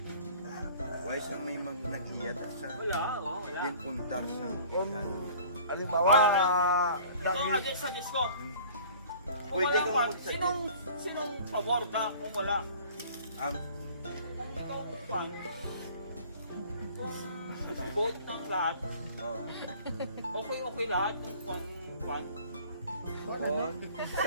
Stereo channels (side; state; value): both; inverted; correlation -0.48